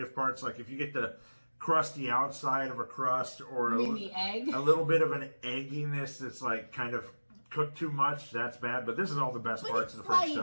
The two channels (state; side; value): inverted; both; correlation -1.00